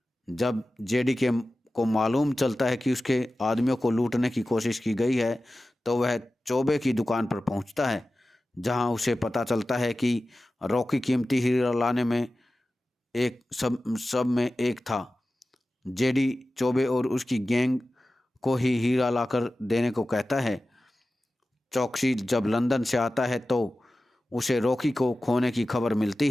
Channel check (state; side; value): normal; both; correlation 0.95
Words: जब जेडी के को मालूम चलता है कि उसके आदमियों को लूटने की कोशिश की गई है, तो वह चौबे की दुकान पर पहुंचता है, जहां उसे पता चलता है कि रॉकी कीमती हीरा लाने में एक सब सब में एक था। जेडी चौबे और उसकी गैंग को ही हीरा लाकर देने को कहता है। चौकसी जब लंदन से आता है तो उसे रॉकी को खोने की खबर मिलती